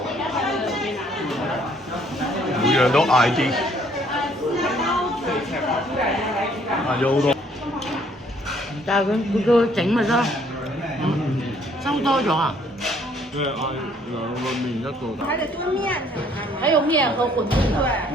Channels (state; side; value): normal; both; correlation 0.63